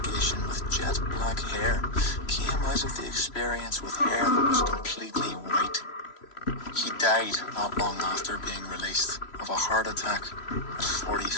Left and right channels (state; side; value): late; right; 3.0 ms